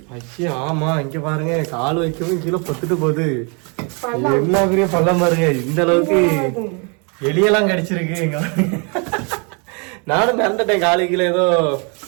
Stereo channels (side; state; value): left; quieter; 34.3 dB